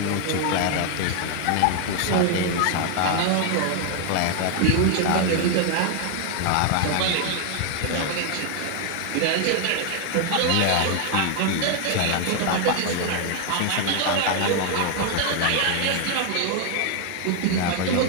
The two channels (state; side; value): different; both; correlation 0.00